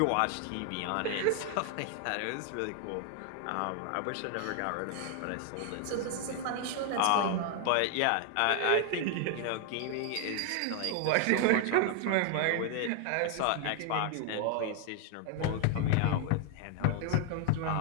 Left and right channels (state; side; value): different; both; correlation 0.00